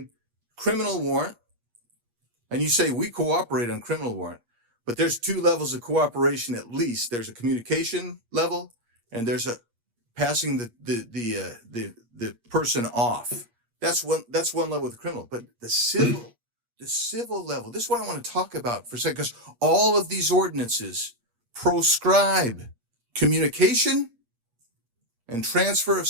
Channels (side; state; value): left; late; 8.5 ms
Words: criminal warrant, and you say we cooperate on criminal warrant, but there's 2 levels of cooperation at least. There's a communication level, and there's a passing the person off. That's one level with the criminal, but the civil level. This is what I want to talk about for a second, because all of these ordinances proscribe communication and transfer of